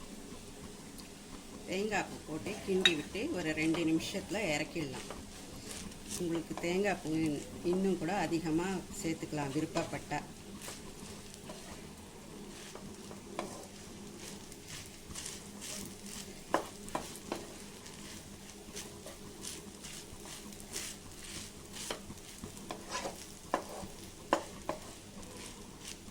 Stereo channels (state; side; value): identical; both; correlation 1.00